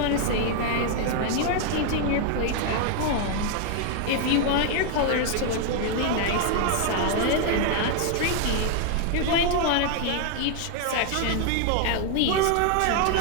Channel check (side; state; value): both; different; correlation 0.00